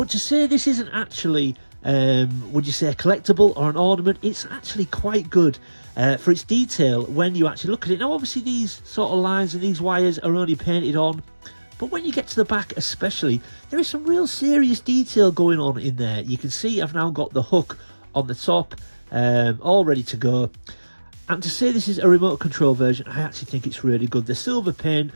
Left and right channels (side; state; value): both; inverted; correlation -1.00